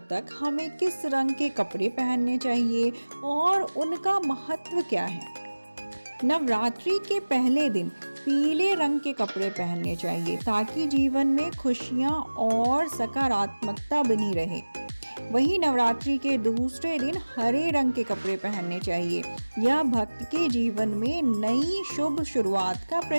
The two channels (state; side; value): inverted; both; correlation -1.00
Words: तक हमें किस रंग के कपड़े पहनने चाहिए और उनका महत्व क्या है। नवरात्रि के पहले दिन पीले रंग के कपड़े पहनने चाहिए ताकि जीवन में खुशियां और सकारात्मकता बनी रहे। वहीं नवरात्रि के दूसरे दिन हरे रंग के कपड़े पहनने चाहिए। यह भक्त के जीवन में नई शुभ शुरुआत का